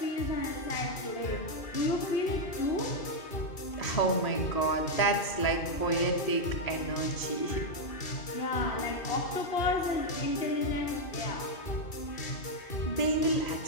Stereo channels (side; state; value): right; late; 2.5 ms